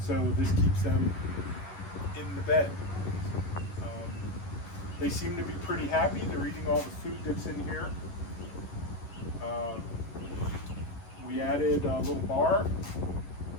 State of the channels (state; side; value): late; right; 11 ms